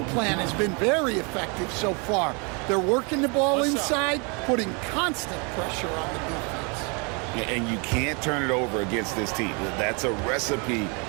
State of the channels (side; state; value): left; quieter; 32.9 dB